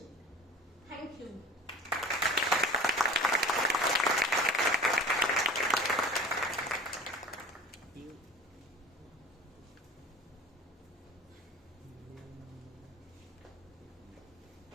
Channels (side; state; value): both; normal; correlation 0.40